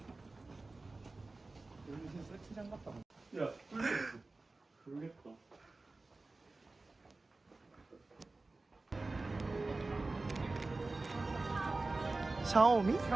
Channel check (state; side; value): quieter; left; 3.3 dB